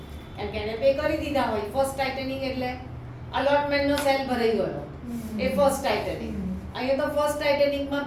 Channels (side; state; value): both; identical; correlation 1.00